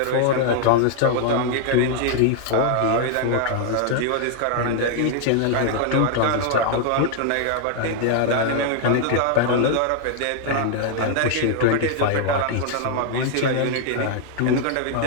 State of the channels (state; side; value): different; both; correlation 0.00